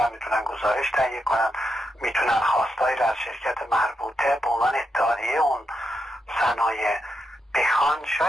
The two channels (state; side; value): normal; both; correlation 0.84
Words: میتونن گزارش تهیه کنن، میتونن خواستایی را از شرکت مربوطه به عنوان اتحادیه اون صنایع بخوان،